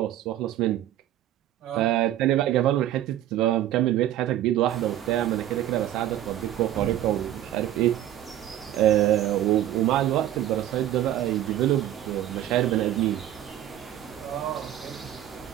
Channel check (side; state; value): left; quieter; 12.5 dB